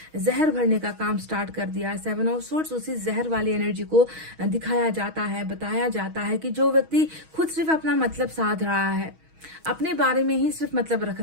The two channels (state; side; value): late; left; 6.3 ms